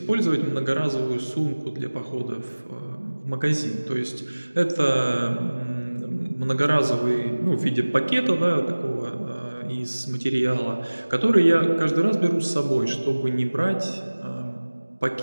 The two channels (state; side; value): inverted; both; correlation -1.00